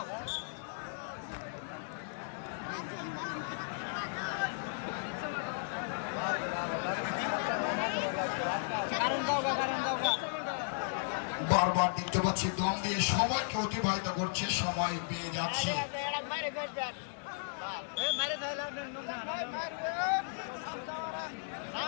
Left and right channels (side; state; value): right; silent; digital silence